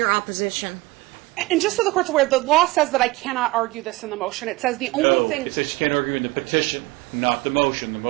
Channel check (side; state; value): left; quieter; 21.3 dB